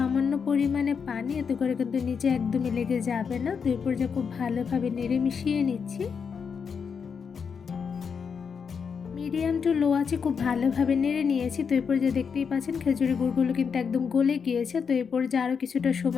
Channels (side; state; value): right; quieter; 6.3 dB